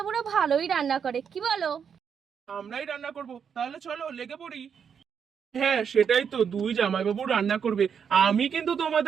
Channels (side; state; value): left; quieter; 7.2 dB